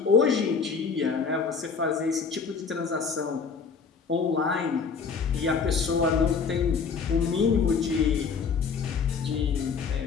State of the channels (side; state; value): right; quieter; 5.5 dB